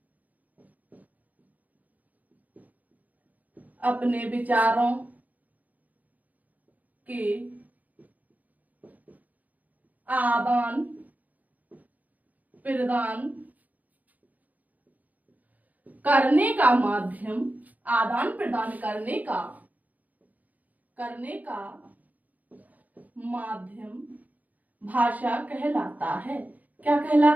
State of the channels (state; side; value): late; left; 0.079 ms